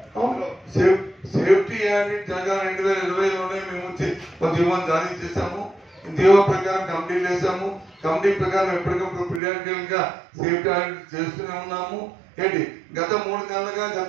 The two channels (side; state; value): left; drops out; at 9.4 s